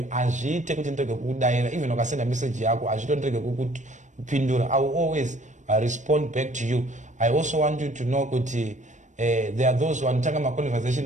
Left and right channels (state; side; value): late; left; 0.35 ms